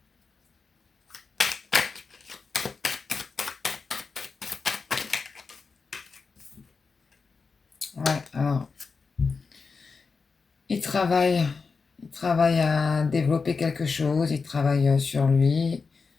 Ouais, alors, il travaille à développer quelque chose, il travaille sur lui.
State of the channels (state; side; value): quieter; right; 4.8 dB